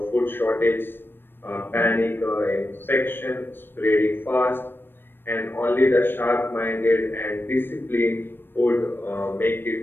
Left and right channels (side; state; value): right; late; 0.098 ms